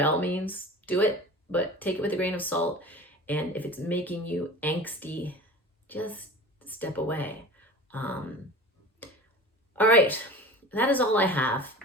all means, do it, but take it with a grain of salt. And if it's making you angsty, just step away. All right, that is all I have.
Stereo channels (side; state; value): both; normal; correlation 0.38